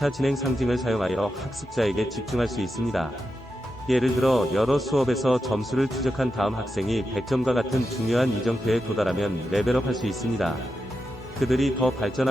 진행 상징을 사용하여 학습자에게 집중할 수 있습니다. 예를 들어 여러 수업에서 점수를 추적한 다음 학생이 100점과 같은 중요한 이정표에 도달하면 레벨업할 수 있습니다. 그들이 더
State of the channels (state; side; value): normal; both; correlation 0.88